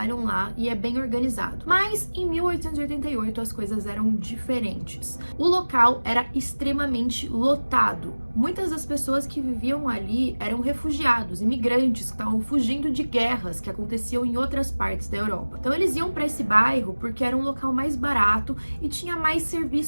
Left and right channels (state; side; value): inverted; both; correlation -1.00